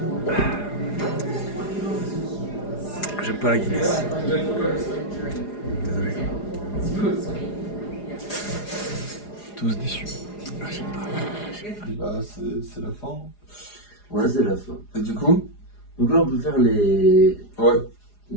J'aime pas la Guinness. Désolé. Tous déçus. Bah, c'est la fin. Ouais, c'est la fin. Et du coup? Donc là, on peut faire les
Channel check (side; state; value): right; late; 4.9 ms